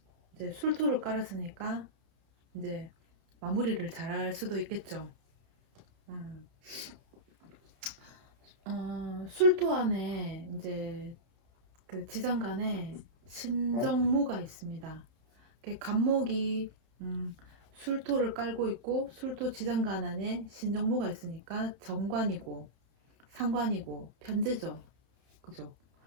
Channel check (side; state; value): left; late; 31 ms